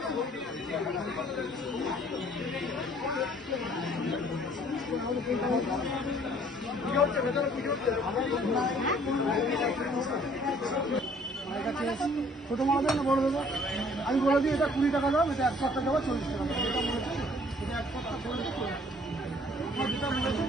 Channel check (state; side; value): normal; both; correlation 0.58